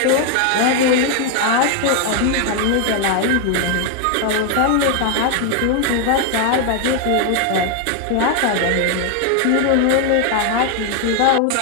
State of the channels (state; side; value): different; both; correlation 0.00